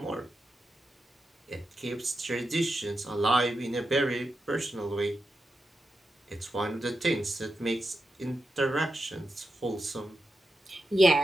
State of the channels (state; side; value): normal; both; correlation 0.88